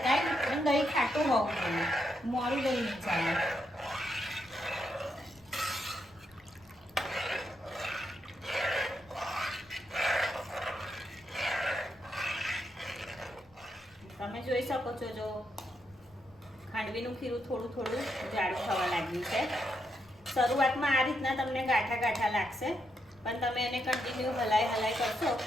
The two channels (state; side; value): noise; left; rumble, 29 dB below the sound